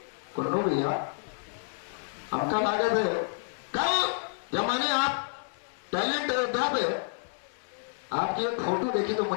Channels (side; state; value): right; silent; digital silence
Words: कुन्नू भैया आपका लागत है। कल जब मैंने आप टैलेंट अयोध्या पे आपकी एक फोटो देखी तो